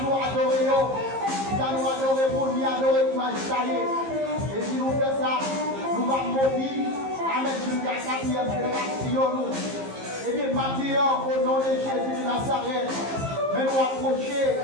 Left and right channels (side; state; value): left; late; 15 ms